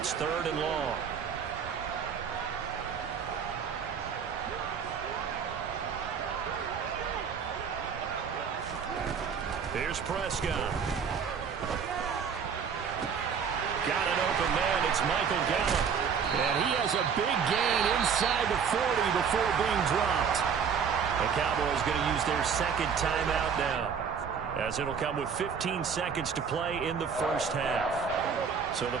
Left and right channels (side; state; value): left; quieter; 6.7 dB